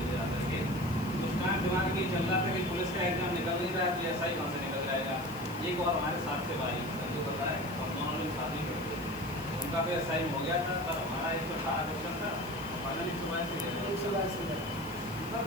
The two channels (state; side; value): noise; right; hiss, 18 dB below the sound